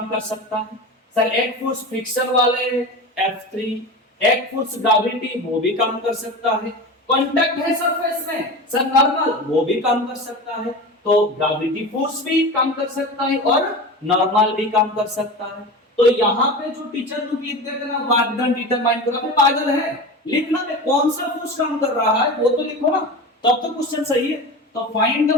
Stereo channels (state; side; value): normal; both; correlation 0.29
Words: कर सकता है। सर एक फोर्स फ्रिक्शन वाले F3, एक फोर्स ग्रेविटी वो भी काम कर सकता है। कांटेक्ट है सरफेस में सर नॉर्मल वो भी काम कर सकता है। तो ग्रेविटी फोर्स भी काम कर सकता है और नॉर्मल भी काम कर सकता है। तो यहाँ पे जो टीचर लोग लिख देते ना वर्क डन डिटरमाइन करो, अबे पागल है, लिखना में कौन सा फोर्स काम कर रहा है वो तो लिखो ना, तब तो क्वेश्चन सही है। तो फाइंड द